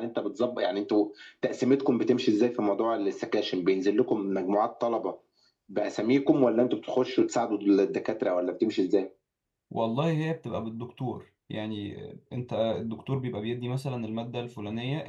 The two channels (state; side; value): identical; both; correlation 1.00